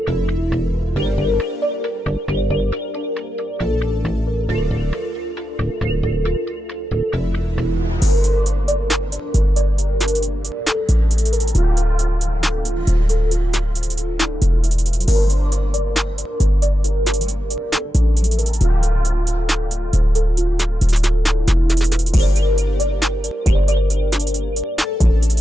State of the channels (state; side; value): normal; both; correlation 0.90